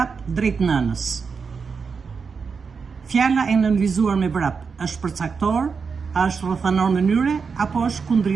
drejt nënës. Fjala e nënvizuar me vrap është përcaktor, a është rrethanor mënyre apo është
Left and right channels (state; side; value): quieter; left; 5.4 dB